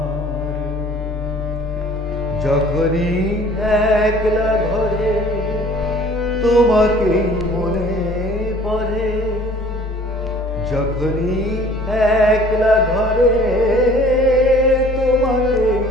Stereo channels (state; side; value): normal; both; correlation 0.52